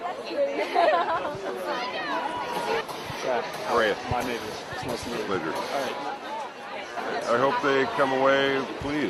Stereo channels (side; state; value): both; identical; correlation 1.00